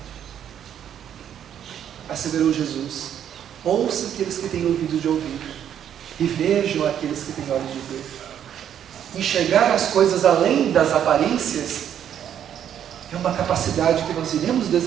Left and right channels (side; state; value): left; quieter; 9.6 dB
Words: Asseverou Jesus: Ouça aqueles que têm ouvido de ouvir e vejam aqueles que têm olhos de ver. Enxergar as coisas além das aparências é uma capacidade que nós iremos